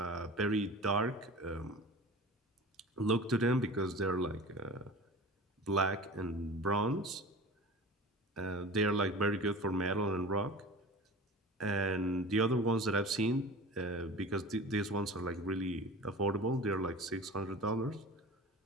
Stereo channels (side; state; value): both; normal; correlation 0.37